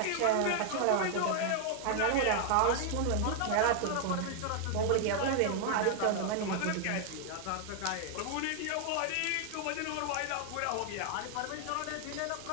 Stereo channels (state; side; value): different; both; correlation 0.00